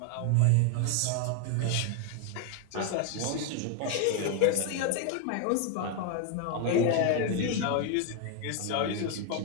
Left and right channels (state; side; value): different; both; correlation 0.01